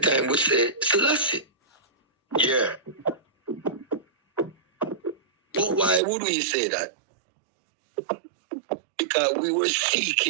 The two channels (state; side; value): drops out; left; at 6.0 s